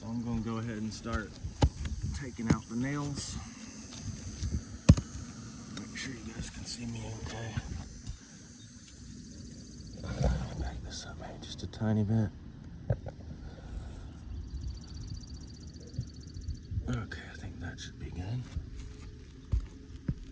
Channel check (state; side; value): identical; both; correlation 1.00